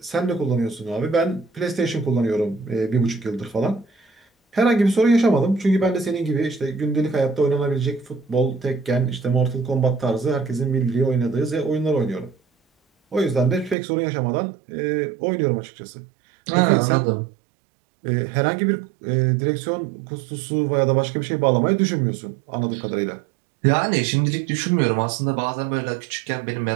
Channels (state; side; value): drops out; left; at 13.8 s